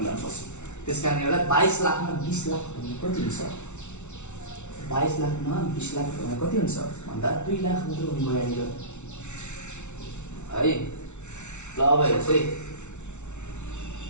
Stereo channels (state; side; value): late; right; 0.82 ms